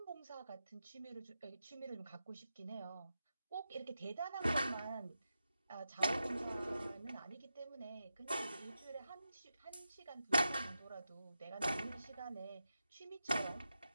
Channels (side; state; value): both; inverted; correlation -0.89